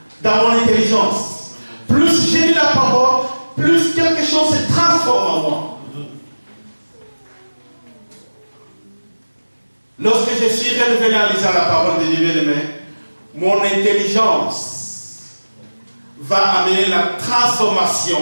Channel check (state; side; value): inverted; both; correlation -1.00